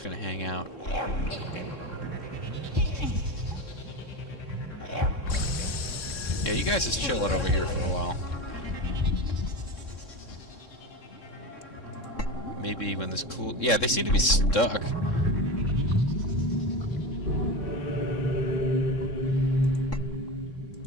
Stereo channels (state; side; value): late; right; 3.7 ms